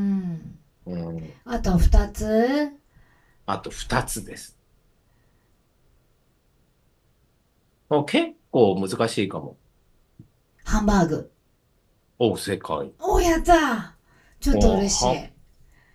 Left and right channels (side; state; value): both; identical; correlation 1.00